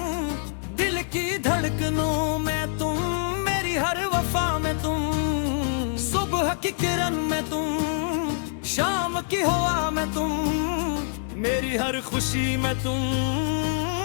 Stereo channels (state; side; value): silent; right; digital silence